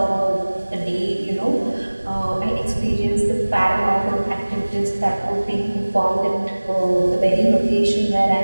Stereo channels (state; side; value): inverted; both; correlation -1.00